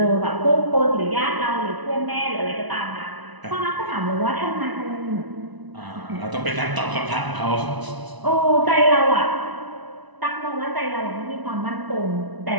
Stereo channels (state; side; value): late; left; 1.0 ms